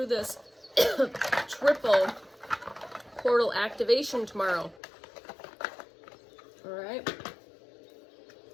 this triple portal activation tomorrow. All right.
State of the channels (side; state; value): right; drops out; at 4.8 s